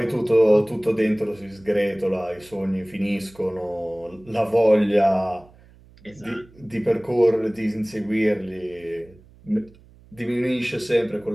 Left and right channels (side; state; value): right; noise; hum, 26 dB below the sound